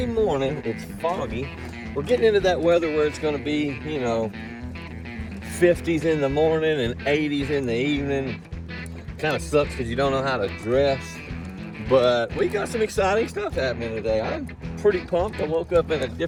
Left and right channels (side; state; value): both; identical; correlation 1.00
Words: morning. It's foggy. We're getting into that weather where it's going to be, you know, 50s in the morning and 80s in the evening. Kind of sucks because you don't know how to dress. But we got some exciting stuff happening today. I'm pretty pumped. I woke up in a